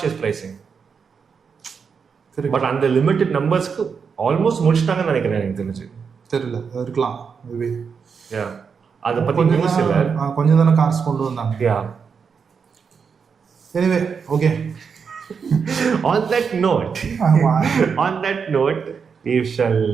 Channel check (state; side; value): quieter; left; 6.0 dB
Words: pricing. Correct. But அந்த லிமிட்டட் நம்பர்ஸ்க்கு ஆல்மோஸ்ட் முடிச்சிட்டாங்கன்னு நினைக்கிறேன் எனக்கு தெரிஞ்சு. தெரியல, இருக்கலாம் மேபி. Yeah, அதை பத்தி நியூஸ் இல்ல, கொஞ்சம் தானே கார்ஸ் கொண்டு வந்தாங்க. Yeah. Anyway, okay. On that note, we shall